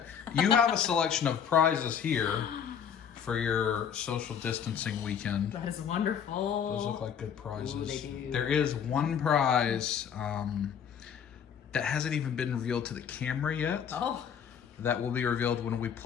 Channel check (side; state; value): right; quieter; 7.9 dB